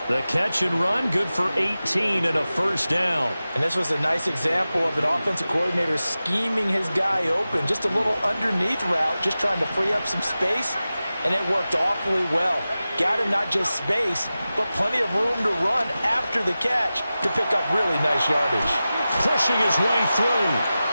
The catch and run, good for 18 and a first down. And this was a nice example of an offensive coordinator scheming his guy open. Just a little underneath route, just trying to free up some space, and it worked awfully well. Got him not just space, but plenty of room to run after the catch to pick up really nice yardage. Pushing his way through.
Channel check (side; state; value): both; inverted; correlation -0.95